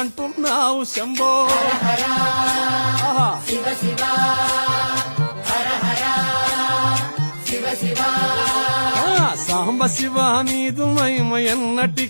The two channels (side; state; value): both; inverted; correlation -1.00